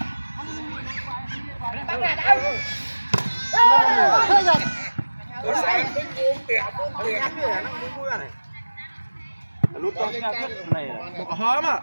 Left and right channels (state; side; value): inverted; both; correlation -1.00